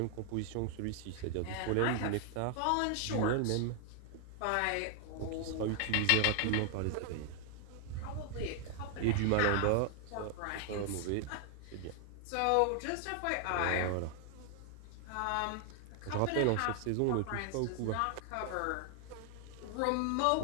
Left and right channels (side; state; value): both; different; correlation 0.00